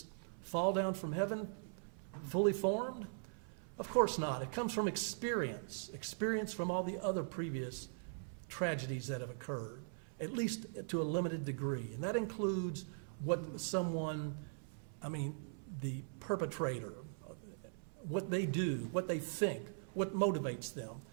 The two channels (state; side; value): silent; left; 51 dB below the other